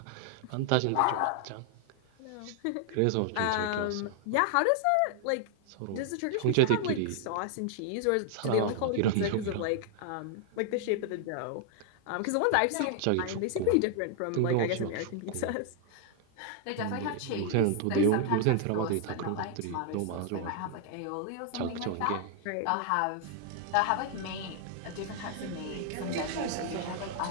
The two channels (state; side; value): different; both; correlation 0.00